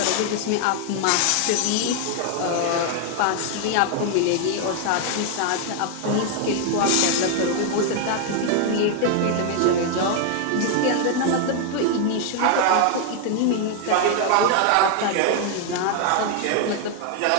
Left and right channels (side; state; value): both; different; correlation 0.00